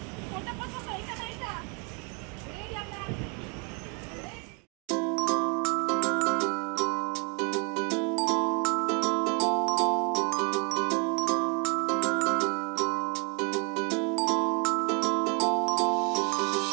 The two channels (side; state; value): left; quieter; 35.1 dB